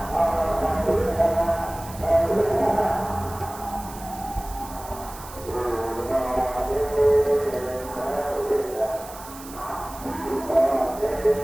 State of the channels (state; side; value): noise; right; hiss, 16 dB below the sound